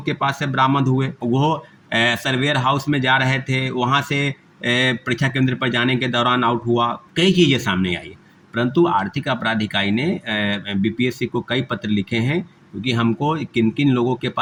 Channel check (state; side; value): identical; both; correlation 1.00